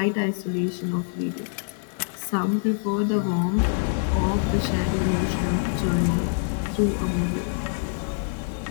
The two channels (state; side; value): silent; right; digital silence